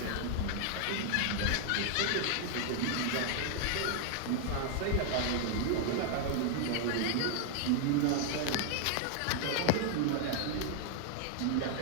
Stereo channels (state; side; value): different; both; correlation 0.00